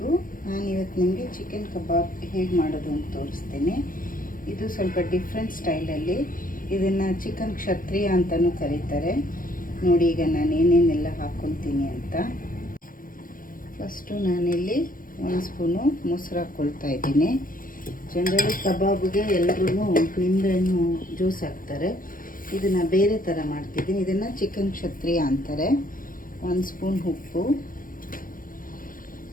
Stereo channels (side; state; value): right; late; 0.40 ms